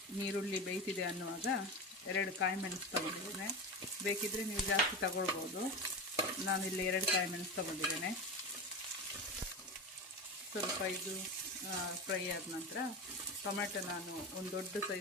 ನೀರುಳ್ಳಿ ಬೇಯ್ತಿದೆ ಅನ್ನುವಾಗ 2 ಕಾಯಿ ಮೆಣಸು ತಗೊಂಡಿದ್ದೇನೆ. ಬೇಕಿದ್ದರೆ ನೀವು ಜಾಸ್ತಿ ತಗೊಳ್ಬೋದು. ನಾನಿಲ್ಲಿ 2 ಕಾಯಿ ಮೆಣಸು ತಗೊಂಡಿದ್ದೇನೆ. ಸ್ವಲ್ಪ ಇದು ಫ್ರೈ ಆದ ನಂತರ ಟೊಮೆಟೊ, ನಾನು ಒಂದು ದೊಡ್ಡ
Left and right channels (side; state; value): both; normal; correlation 0.23